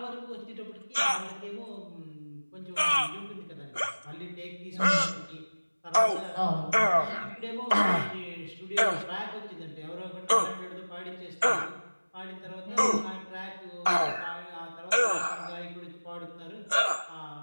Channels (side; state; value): both; inverted; correlation -1.00